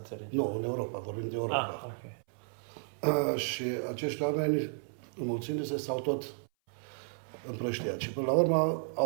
Nu, în Europa, vorbim de Europa. Okay. Și acești oameni, înmulțindu-se, s-au tot împrăștiat. Și până la urmă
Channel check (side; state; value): left; silent; 56 dB below the other